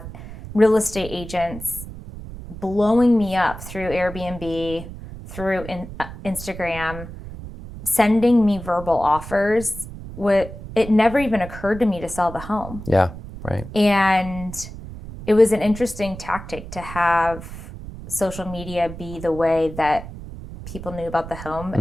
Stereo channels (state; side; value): noise; right; rumble, 12 dB below the sound